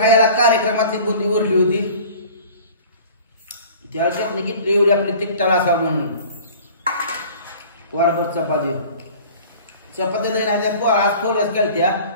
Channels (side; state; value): both; inverted; correlation -0.45